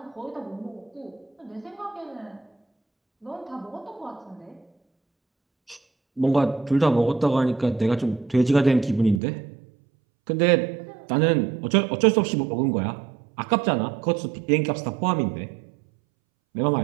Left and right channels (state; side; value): drops out; left; at 9.2 s